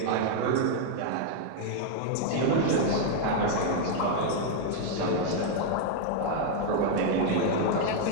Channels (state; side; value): different; both; correlation 0.00